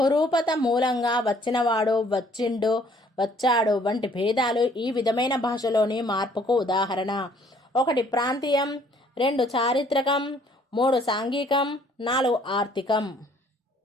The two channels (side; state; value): both; normal; correlation 0.61